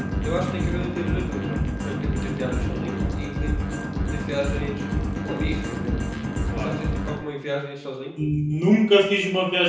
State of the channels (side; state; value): both; identical; correlation 1.00